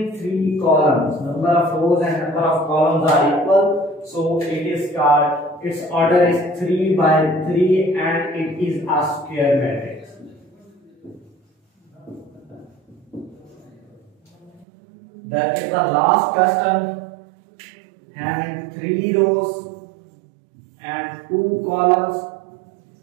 3 columns. Number of rows and number of columns are equal, so it is called, its order is 3 by 3 and it is a square matrix. That is the last question, having 3 rows and 2 columns.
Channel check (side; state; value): left; drops out; at 14.7 s